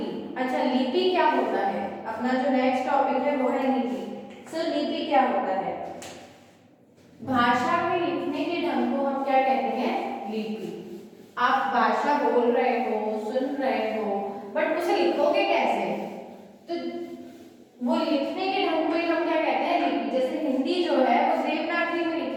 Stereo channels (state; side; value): identical; both; correlation 1.00